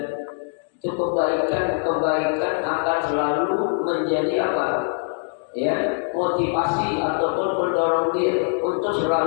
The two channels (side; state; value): right; silent; digital silence